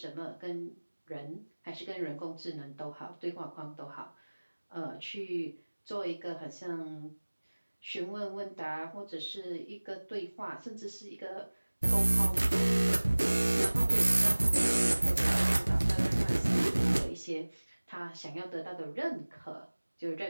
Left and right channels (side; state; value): both; inverted; correlation -1.00